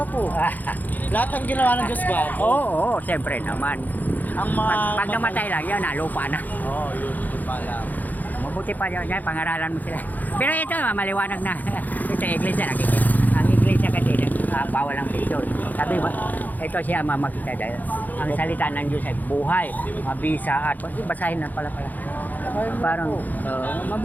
Lahat ng ginawa ng Diyos ba? Oo, siyempre naman. Ang mga... Pag namatay lang, yun na, lupa na. Oo, yun. Yun pala. Mabuti pa yun, yan, pangaralan mo sila. Pero ito, maliwanag na. Ito, iglesia, nakikita. Ang iglesia kasi, bawal ang picture. Sabi mo, ito siya mamakita dahil ang salita ng Diyos ay buhay, mabisa at basahin na pala. Parang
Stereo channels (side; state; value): right; late; 0.083 ms